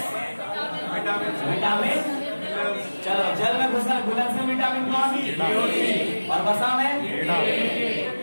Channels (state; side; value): inverted; both; correlation -1.00